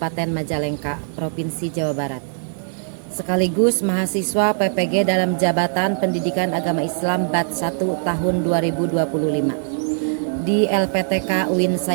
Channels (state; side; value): silent; left; 58 dB below the other